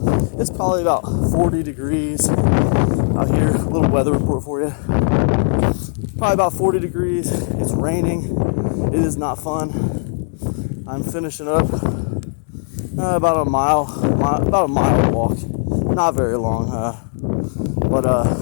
It's probably about 40 degrees out here. A little weather report for you. Probably about 40 degrees. It's raining. It is not fun. I'm finishing up about a mile walk. Not very long, but I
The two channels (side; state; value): right; silent; 65 dB below the other